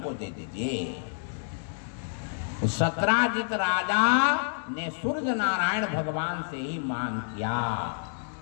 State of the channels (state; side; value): silent; right; digital silence